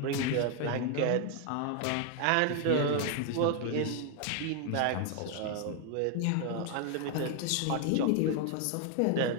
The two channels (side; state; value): both; different; correlation 0.01